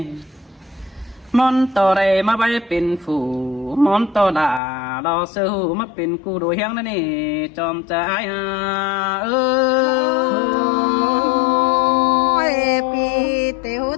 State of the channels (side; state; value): right; drops out; at 4.6 s